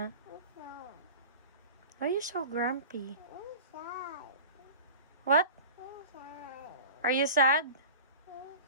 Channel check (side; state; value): both; inverted; correlation -0.37